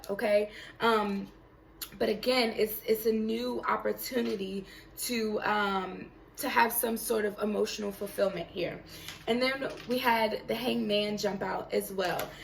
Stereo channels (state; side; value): identical; both; correlation 1.00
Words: okay? But again, it's a new opportunity to have some sort of emotional fulfillment here. And then we had the Hangman jump out as well.